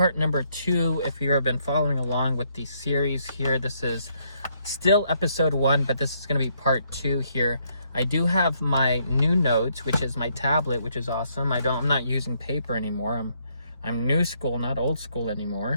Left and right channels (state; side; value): inverted; both; correlation -0.72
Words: number 2. If you've been following along with the series here, this is still episode 1, but this is going to be part 2 here. I do have my new notes, which is my tablet, which is awesome. I'm not using paper anymore. I'm new school, not old school